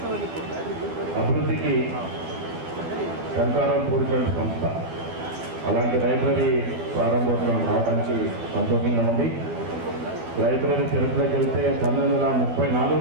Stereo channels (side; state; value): left; late; 12 ms